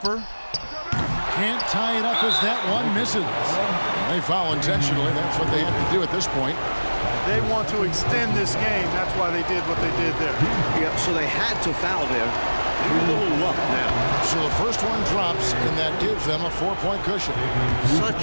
Can't tie it up as that one misses. They foul intentionally. That's what they have to do at this point. They want to extend this game. That's why they did what they did there. Yeah, so they had to foul there. A little luck now. So the first one drops, and that gives them a 4-point cushion.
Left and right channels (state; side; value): inverted; both; correlation -1.00